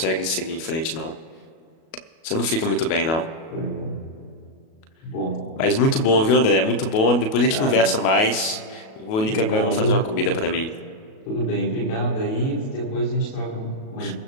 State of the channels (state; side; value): late; right; 37 ms